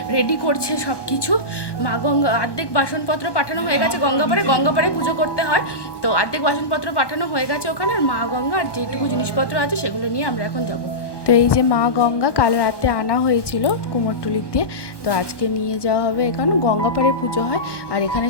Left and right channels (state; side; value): late; right; 1.1 ms